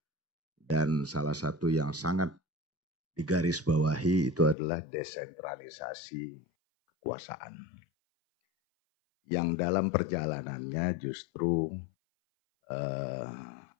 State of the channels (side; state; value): right; drops out; at 4.5 s